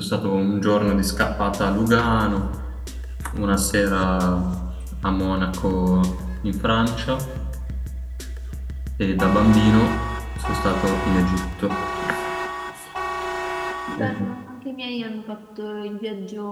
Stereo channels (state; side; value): identical; both; correlation 1.00